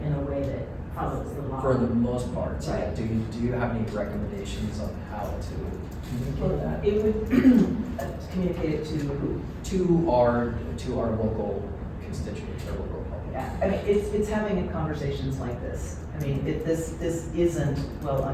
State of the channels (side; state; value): both; identical; correlation 1.00